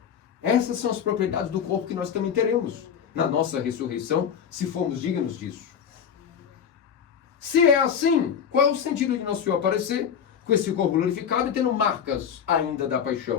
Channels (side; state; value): right; quieter; 7.8 dB